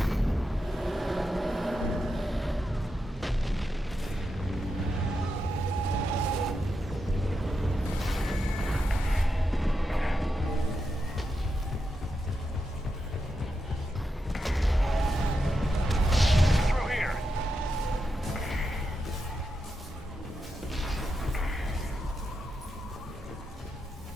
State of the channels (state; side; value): normal; both; correlation 0.86